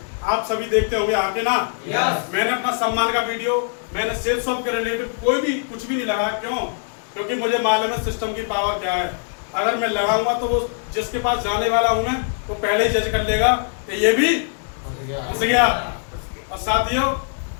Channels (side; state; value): right; silent; 64 dB below the other